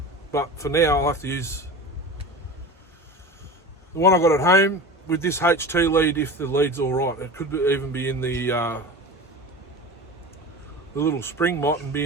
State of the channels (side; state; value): both; normal; correlation 0.32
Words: But for now, I'll have to use the one I got at home with this HT lead if the lead's all right. It could even be in the little spring mott and be